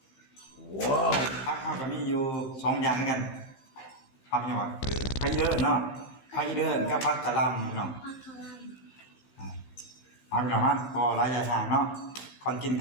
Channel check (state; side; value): late; right; 15 ms